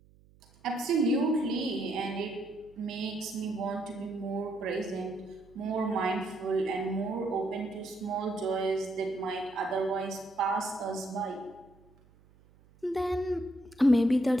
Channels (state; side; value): noise; right; hum, 28 dB below the sound